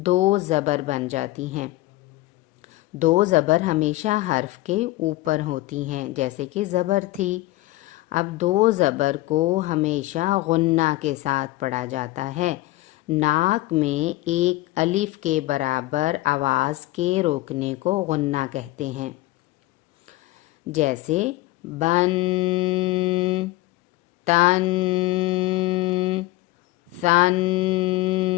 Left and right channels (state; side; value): quieter; right; 18.3 dB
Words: دو زبر بن جاتی ہیں۔ دو زبر ہمیشہ حرف کے اوپر ہوتی ہیں، جیسے کہ زبر تھی۔ اب دو زبر کو ہمیشہ غنہ کے ساتھ پڑھا جاتا ہے۔ ناک میں ایک الف کے برابر آواز کے روکنے کو غنہ کہتے ہیں، جیسے بن، تن، ثن۔